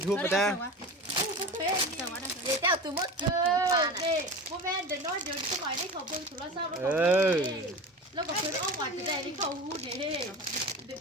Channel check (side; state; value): both; normal; correlation 0.31